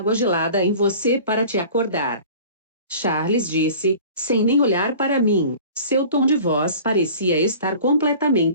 gelada em você para te acordar. Charles disse, sem nem olhar para mim. Seu tom de voz parecia estar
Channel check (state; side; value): inverted; both; correlation -0.43